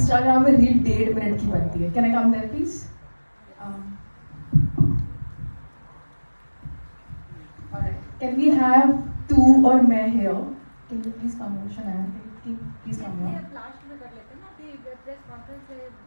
में रील 1.5 मिनट की बनती है. Can I come there please? Can we have तू और मैं here? Can you please come over? Shanaya please come over. Last में कर लेते हैं ना, अभी प्रेस कॉन्फ्रेंस है.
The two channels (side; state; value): both; inverted; correlation -1.00